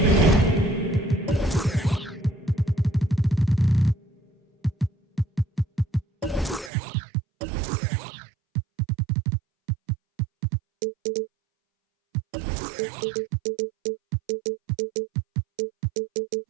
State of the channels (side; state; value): left; drops out; at 6.7 s